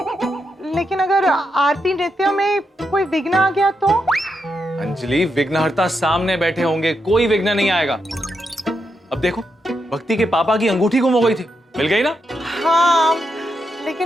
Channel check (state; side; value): normal; both; correlation 0.83